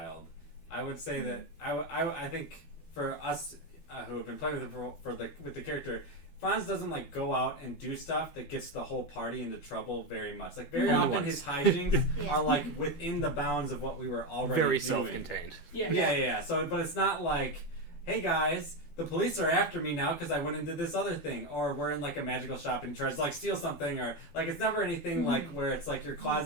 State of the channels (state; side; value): late; right; 12 ms